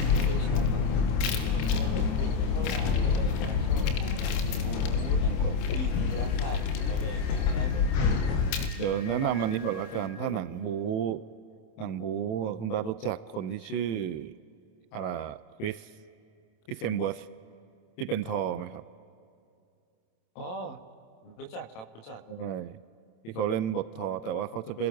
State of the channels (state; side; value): late; right; 27 ms